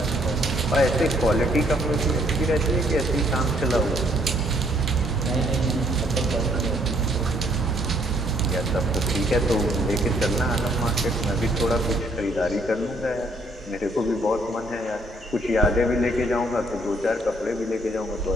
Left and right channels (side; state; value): both; normal; correlation 0.66